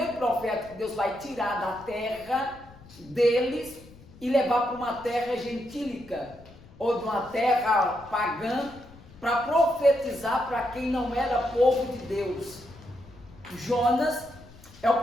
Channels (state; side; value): noise; left; rumble, 22 dB below the sound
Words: profeta que Deus vai tirar da terra deles e levar para uma terra gentílica, ou de uma terra pagã, para profetizar para quem não era povo de Deus. Jonas é o